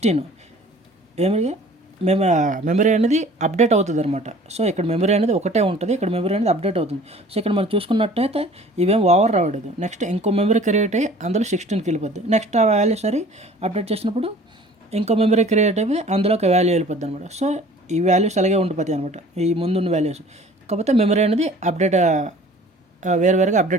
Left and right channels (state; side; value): normal; both; correlation 0.48